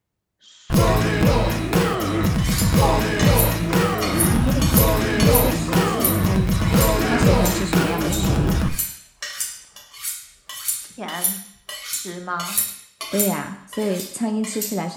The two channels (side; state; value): both; identical; correlation 1.00